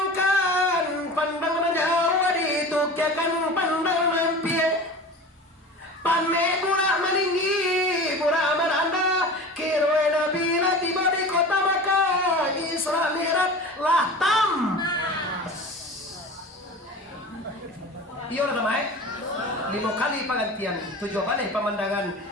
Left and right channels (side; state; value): both; normal; correlation 0.35